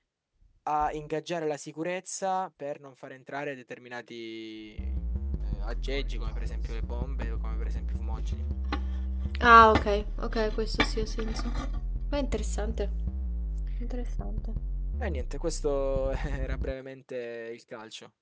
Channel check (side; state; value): both; identical; correlation 1.00